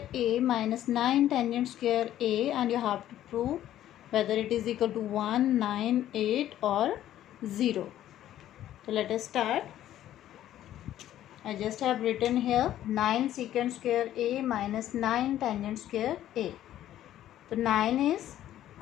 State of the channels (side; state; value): right; quieter; 12.4 dB